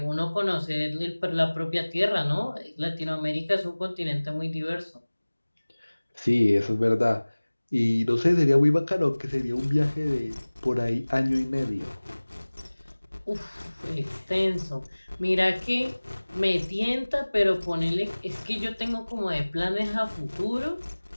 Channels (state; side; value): inverted; both; correlation -1.00